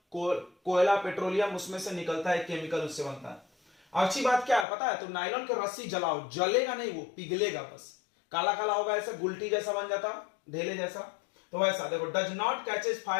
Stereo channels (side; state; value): right; drops out; at 4.7 s